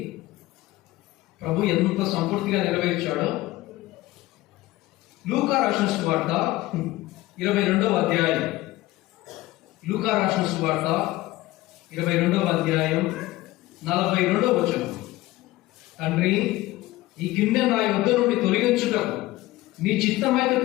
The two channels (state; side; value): quieter; right; 17.9 dB